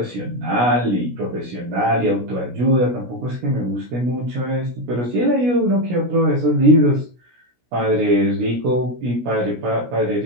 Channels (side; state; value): left; late; 16 ms